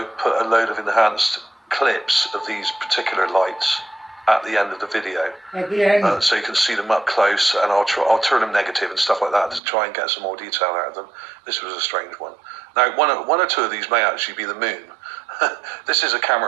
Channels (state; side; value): drops out; left; at 9.6 s